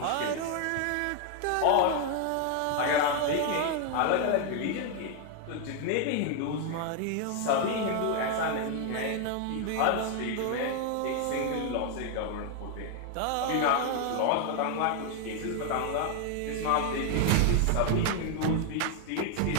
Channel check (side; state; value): both; different; correlation 0.00